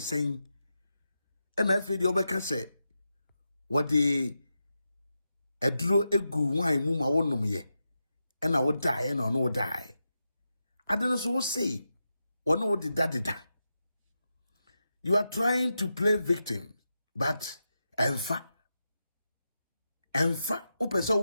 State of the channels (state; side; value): inverted; both; correlation -0.88